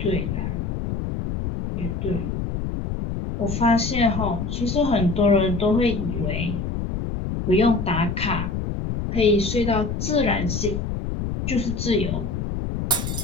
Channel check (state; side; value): noise; left; rumble, 3 dB below the sound